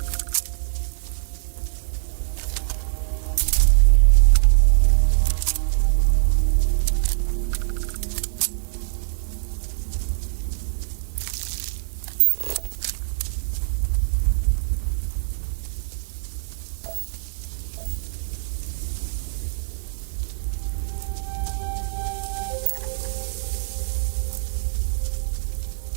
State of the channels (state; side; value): silent; left; digital silence